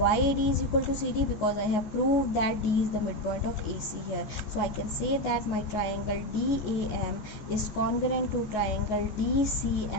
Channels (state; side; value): late; right; 14 ms